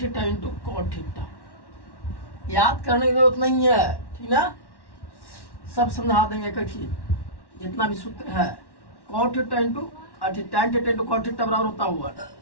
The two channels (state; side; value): late; right; 1.1 ms